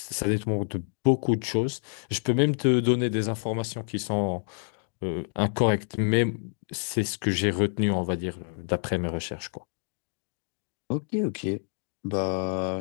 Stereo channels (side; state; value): right; silent; digital silence